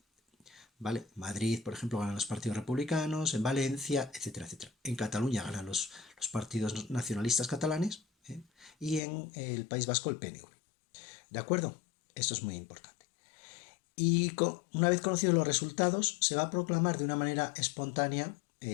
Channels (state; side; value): drops out; right; at 9.0 s